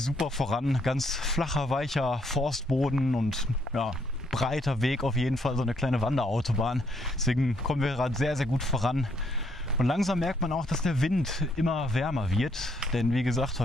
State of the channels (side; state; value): both; normal; correlation 0.71